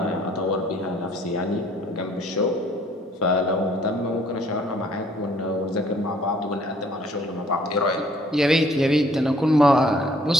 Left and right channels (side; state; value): both; normal; correlation 0.60